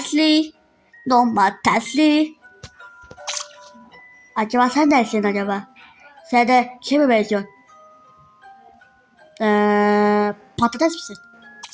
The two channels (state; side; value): identical; both; correlation 1.00